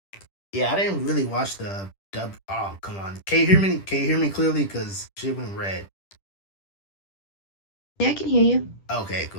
Yeah, I didn't really watch the dub. Oh, come on. Can you hear me? Can you hear me clearly? Because shit went red. Yeah, I can hear you. Okay,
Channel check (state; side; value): late; right; 10 ms